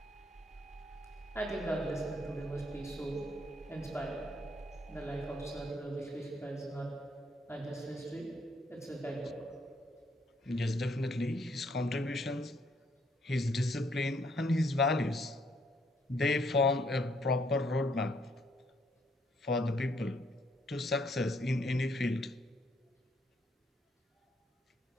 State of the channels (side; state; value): both; normal; correlation 0.70